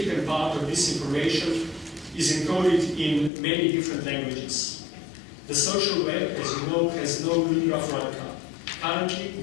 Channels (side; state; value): right; drops out; at 3.3 s